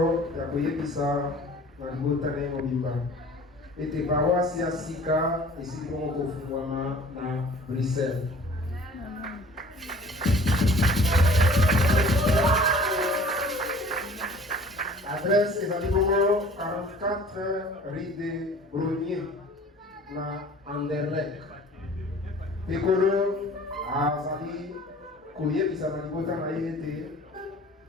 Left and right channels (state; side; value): normal; both; correlation 0.48